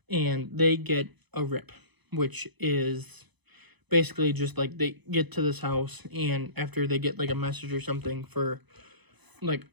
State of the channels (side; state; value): left; late; 1.0 ms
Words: and they get a rip, which is basically just like they get to this house, and after they get like a message or something for like